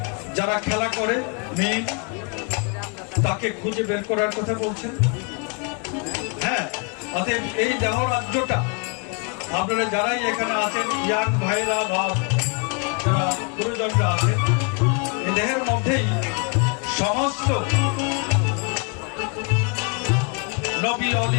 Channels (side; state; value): right; quieter; 35.6 dB